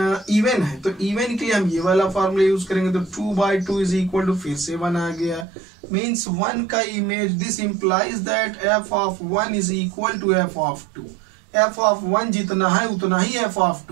इवन है तो इवन के लिए हम ये वाला फार्मूला यूज करेंगे, तो 2/2 इज इक्वल टू फिर से 1 आ गया, मीन्स 1 का image, this implies that f of 1 is equal to f of 2। f of 1 जितना है उतना ही f ऑफ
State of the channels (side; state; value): left; drops out; at 5.5 s